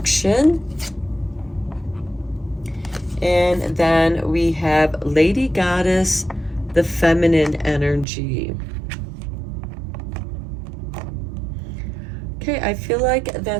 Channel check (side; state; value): left; drops out; at 8.1 s